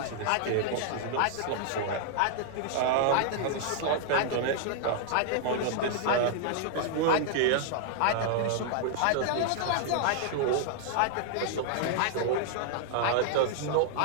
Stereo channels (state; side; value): different; both; correlation -0.01